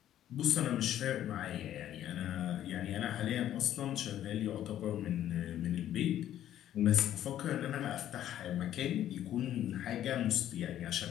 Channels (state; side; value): quieter; right; 11.7 dB